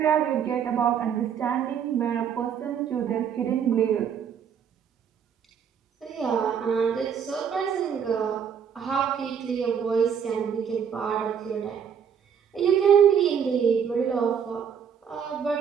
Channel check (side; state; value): left; quieter; 7.7 dB